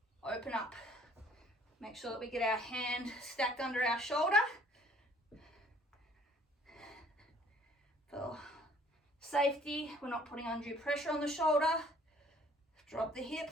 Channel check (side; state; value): both; normal; correlation 0.58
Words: open up. Make sure that we get our hand stacked under our shoulder. For safety, we're not putting undue pressure on the shoulder. Drop the hip,